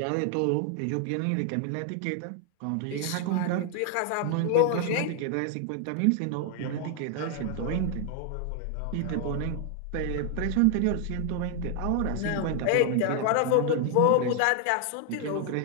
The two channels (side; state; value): both; different; correlation 0.00